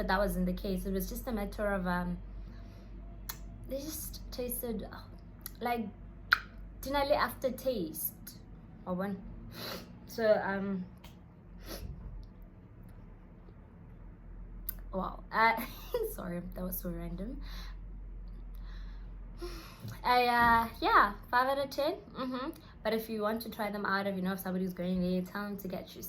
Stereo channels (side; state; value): both; identical; correlation 1.00